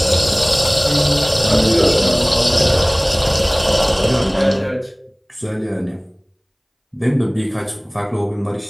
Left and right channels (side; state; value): both; identical; correlation 1.00